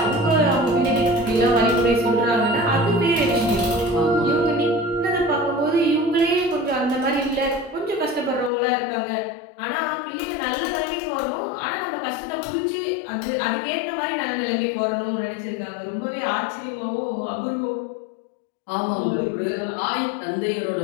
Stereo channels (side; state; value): right; drops out; at 8.5 s